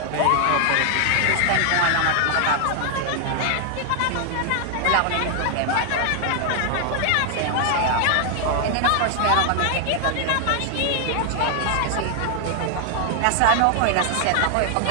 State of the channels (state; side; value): different; both; correlation 0.00